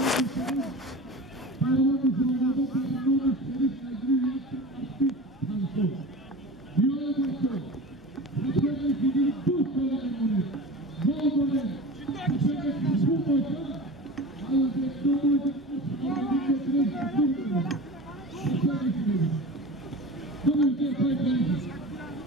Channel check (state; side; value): normal; both; correlation 0.34